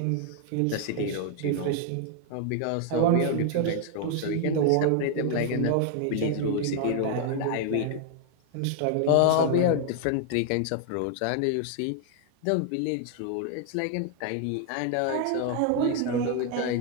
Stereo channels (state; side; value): different; both; correlation 0.00